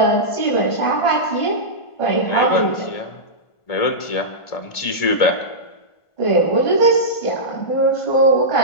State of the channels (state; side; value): late; right; 1.5 ms